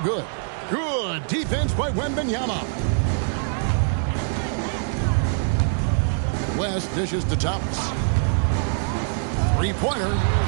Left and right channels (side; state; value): left; silent; digital silence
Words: Good defense by Wembanyama. West dishes to Thomas. Three-pointer.